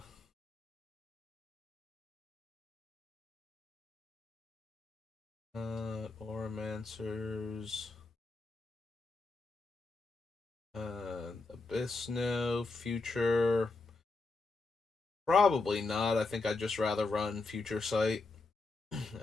Oromancers. Abyss, no. Future. Probably not. I think I'd just rather run Future Sight.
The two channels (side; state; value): right; quieter; 3.6 dB